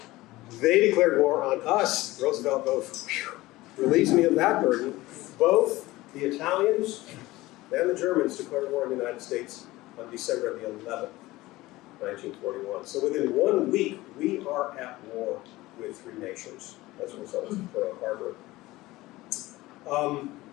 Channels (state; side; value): quieter; right; 18.8 dB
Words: They declared war on us. Roosevelt goes, relieves me of that burden. Both the Italians and the Germans declared war on the United States on December the 11th, 1941. So within 1 week, we are at war with three nations as a result of Pearl Harbor.